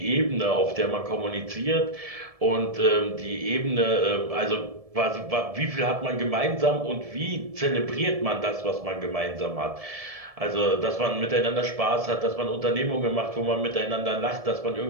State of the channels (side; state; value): left; late; 1.7 ms